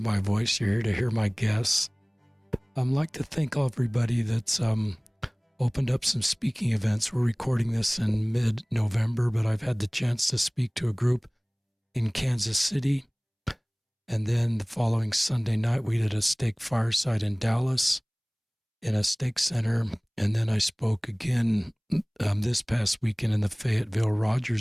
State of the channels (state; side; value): identical; both; correlation 1.00